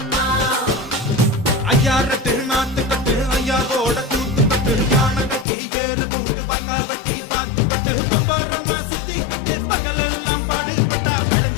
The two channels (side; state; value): right; drops out; at 5.5 s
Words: ஐயாரத்து நாத்து கட்டு ஐயாவோட கூத்து கட்டு யானை கட்டி ஏறு பூட்டு பாய்க்கால் வட்டி பார்த்து கட்டு பம்பரமா சுத்தி கட்டு பகலெல்லாம் பாடுபட்டா